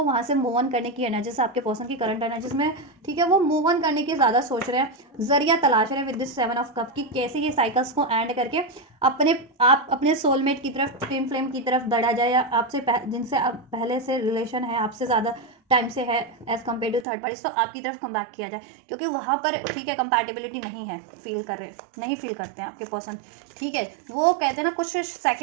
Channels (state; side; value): drops out; left; at 17.1 s